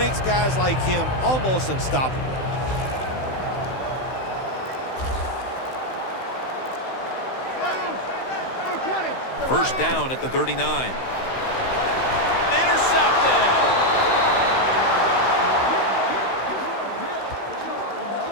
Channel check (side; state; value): right; late; 16 ms